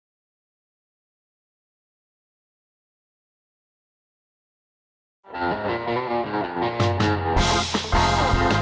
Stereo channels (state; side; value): identical; both; correlation 1.00